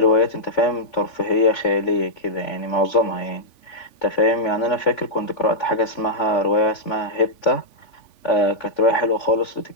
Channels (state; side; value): late; right; 3.5 ms